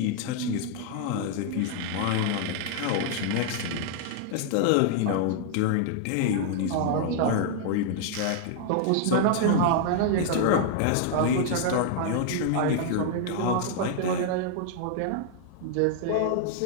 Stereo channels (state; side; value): different; both; correlation 0.00